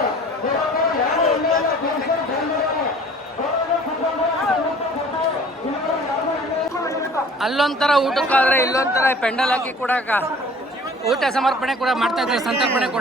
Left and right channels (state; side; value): normal; both; correlation 0.49